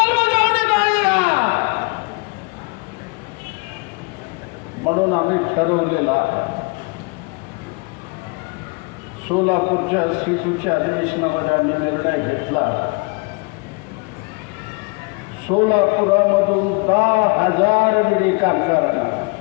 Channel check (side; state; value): right; quieter; 29.7 dB